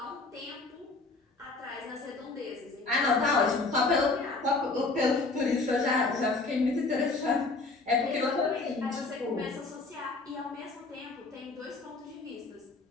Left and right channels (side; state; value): right; quieter; 3.6 dB